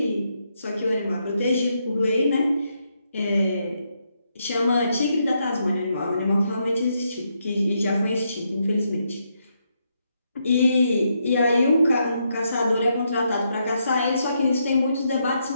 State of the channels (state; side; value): inverted; both; correlation -0.79